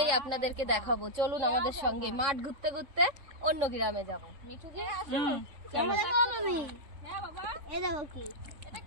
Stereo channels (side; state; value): left; late; 3.6 ms